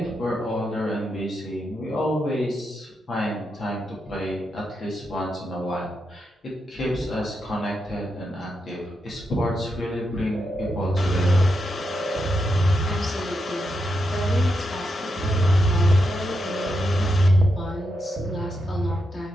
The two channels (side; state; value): both; normal; correlation 0.84